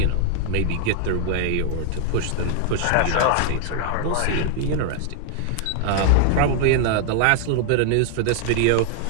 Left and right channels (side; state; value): both; different; correlation 0.00